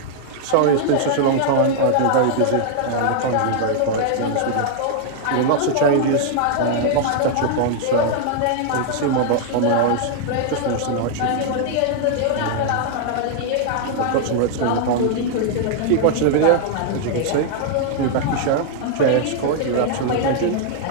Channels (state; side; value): different; both; correlation 0.00